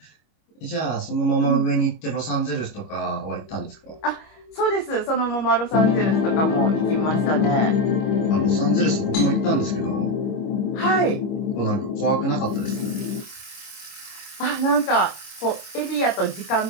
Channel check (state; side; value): late; right; 25 ms